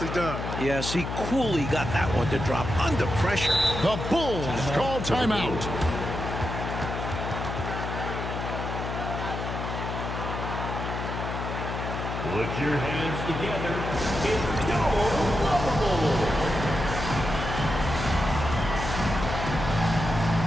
done. Yes, he coolly got that one to drop under pressure. The Bulls call timeout. Put your hands together. It's your lovable.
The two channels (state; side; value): noise; left; hum, 5 dB below the sound